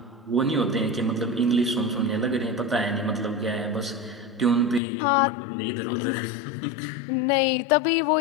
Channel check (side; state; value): right; drops out; at 4.8 s